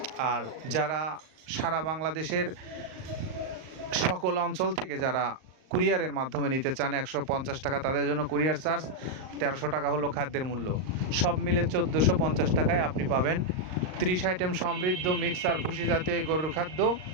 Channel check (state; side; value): late; left; 38 ms